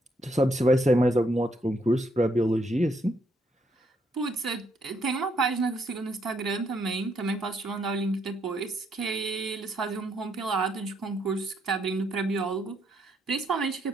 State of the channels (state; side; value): normal; both; correlation 0.74